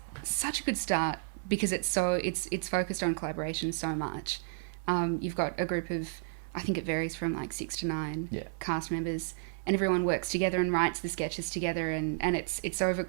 it's such a good start because it's focused on collaboration so much. You've got a group of, I think it varies from like 6 to 9 cast members, and everyone works together and writes the sketches together, and it's over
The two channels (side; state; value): left; silent; 56 dB below the other